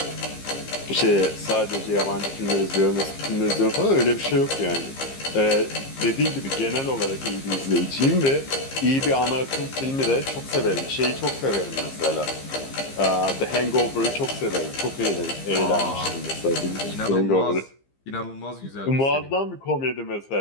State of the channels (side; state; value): right; late; 15 ms